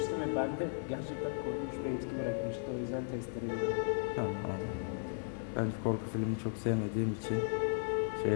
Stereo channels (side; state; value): right; silent; 54 dB below the other